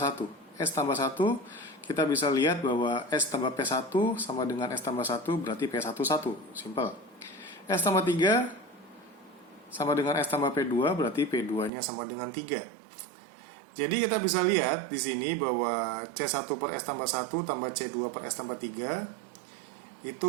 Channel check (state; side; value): drops out; left; at 11.7 s